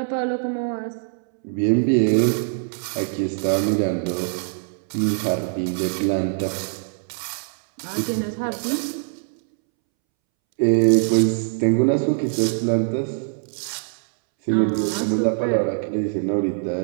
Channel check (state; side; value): silent; left; 64 dB below the other